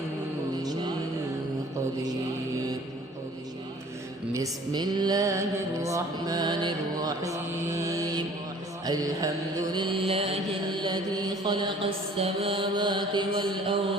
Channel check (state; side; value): normal; both; correlation 0.51